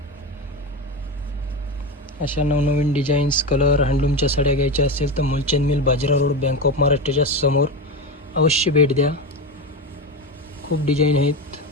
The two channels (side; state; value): both; normal; correlation 0.19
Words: अशा नवनवीन डिझाईन्स, कलर, हँडलूमच्या साड्या घ्यायच्या असतील तर Mulchand mill, Bajirao road, bank of महाराष्ट्राच्या समोर अवश्य भेट द्या. खूप डिझाईन